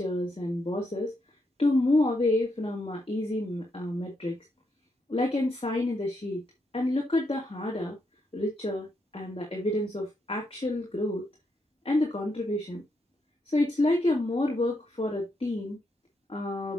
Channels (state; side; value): normal; both; correlation 0.80